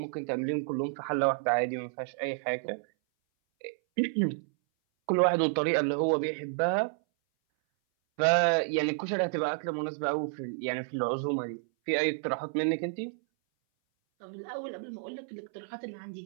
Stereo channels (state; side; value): silent; left; 57 dB below the other